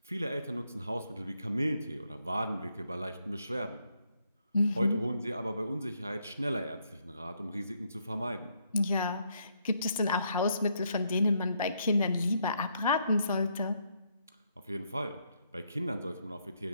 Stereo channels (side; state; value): both; inverted; correlation -0.74